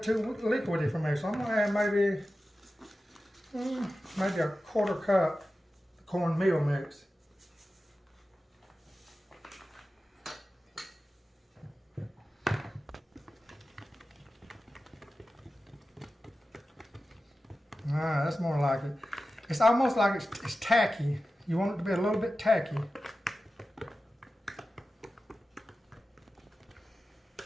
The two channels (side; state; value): both; normal; correlation 0.94